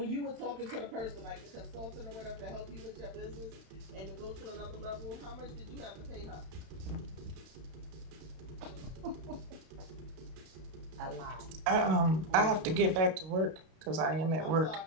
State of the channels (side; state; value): left; late; 32 ms